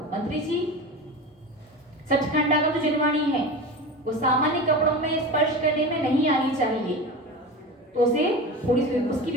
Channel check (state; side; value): normal; both; correlation 0.28